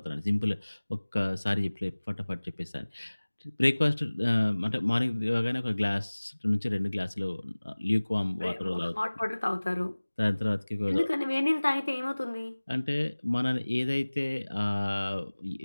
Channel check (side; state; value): both; inverted; correlation -1.00